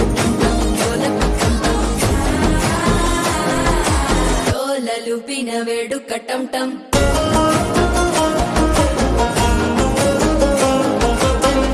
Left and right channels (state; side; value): identical; both; correlation 1.00